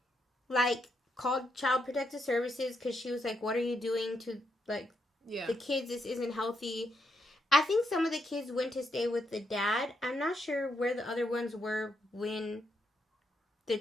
like, called Child Protective Services because she was like, what are you doing to, like, the kids? This isn't healthy. I think some of the kids went to stay with the dad. I'm not sure where the other ones were when the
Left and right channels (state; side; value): normal; both; correlation 0.79